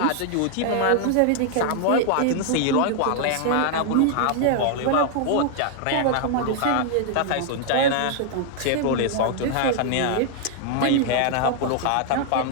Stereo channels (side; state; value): both; different; correlation 0.00